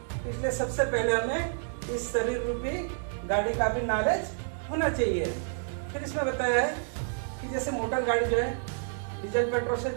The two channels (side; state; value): left; silent; digital silence